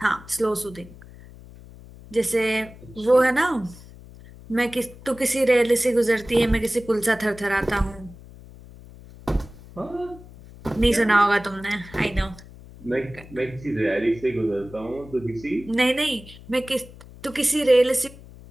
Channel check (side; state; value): left; noise; hum, 19 dB below the sound